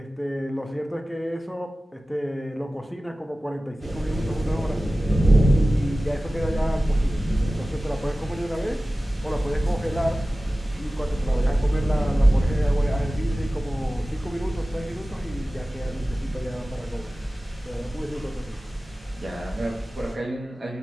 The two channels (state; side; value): normal; both; correlation 0.96